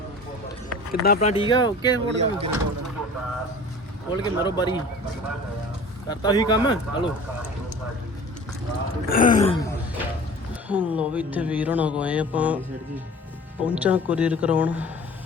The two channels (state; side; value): normal; both; correlation 0.42